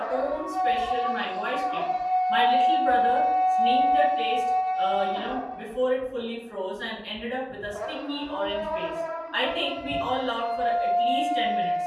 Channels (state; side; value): identical; both; correlation 1.00